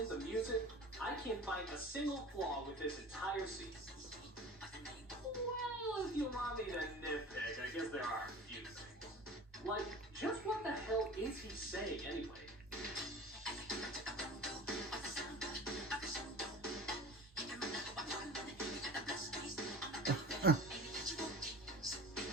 the music, I can't find a single flaw with this entire scene. Well, if you want me to nitpick, I guess there are a few things. Like, just what the hell is he saying anyway?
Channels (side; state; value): both; normal; correlation 0.39